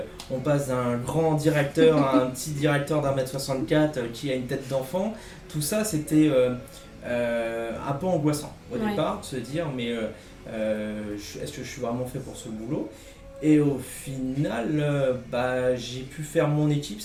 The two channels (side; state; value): both; identical; correlation 1.00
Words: on passe d'un grand directeur à un petit directeur d'1m64 qui a une tête d'enfant. Tout ça c'était un peu angoissant au départ, de se dire mais est-ce que je suis vraiment fait pour ce boulot ? Et au final, j'ai pu faire mon équipe,